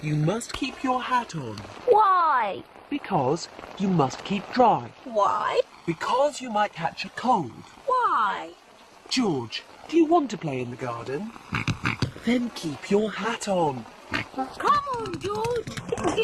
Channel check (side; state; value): both; identical; correlation 1.00